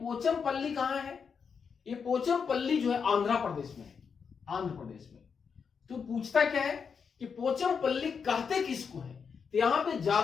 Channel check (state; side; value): quieter; right; 6.2 dB